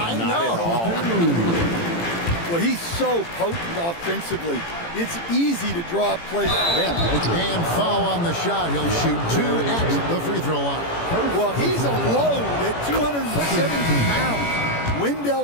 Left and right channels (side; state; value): right; late; 18 ms